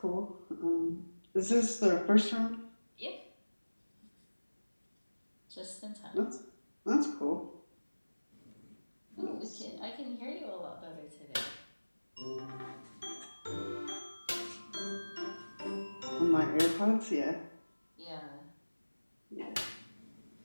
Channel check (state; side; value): inverted; both; correlation -1.00